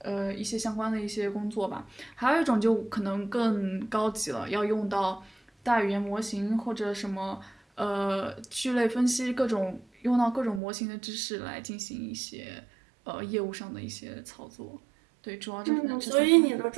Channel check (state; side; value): drops out; left; at 10.6 s